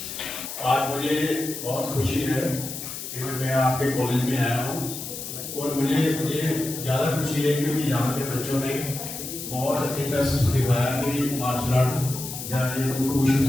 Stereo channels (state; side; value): noise; left; hiss, 8 dB below the sound